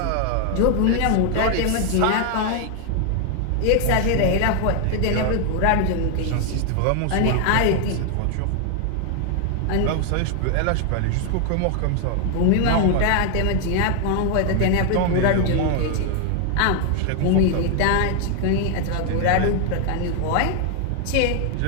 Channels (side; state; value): both; different; correlation 0.00